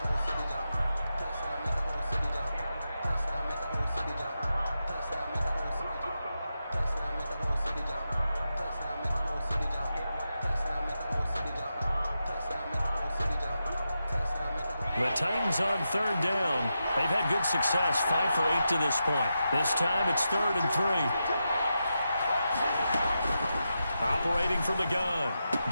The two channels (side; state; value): both; inverted; correlation -0.88